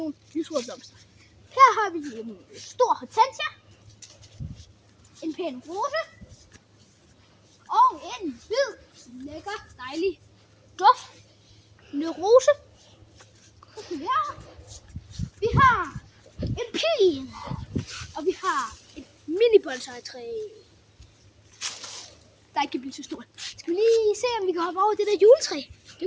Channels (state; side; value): identical; both; correlation 1.00